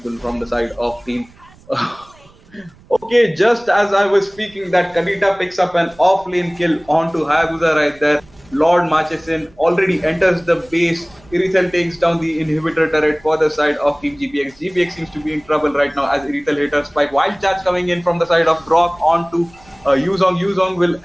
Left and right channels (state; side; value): noise; right; rumble, 27 dB below the sound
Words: from the side of Team. Okay, just as I was speaking, that Kadita picks up an off-lane kill onto Hayabusa right there. Lord marches in, already enters the base. Irithel takes down the inhibitor turret for the side of Team GPX. GPX seems to be in trouble right now as Irithel hit her spike. Wild charge coming in from the side of Brock onto Yuzong. Yuzong will